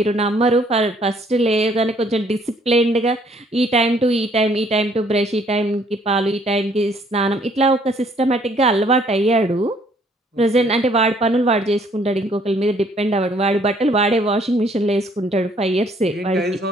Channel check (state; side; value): normal; both; correlation 0.63